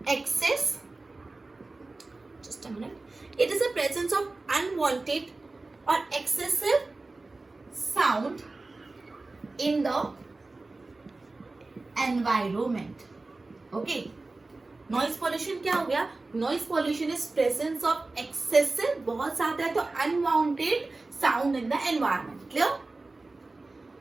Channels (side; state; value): left; quieter; 3.3 dB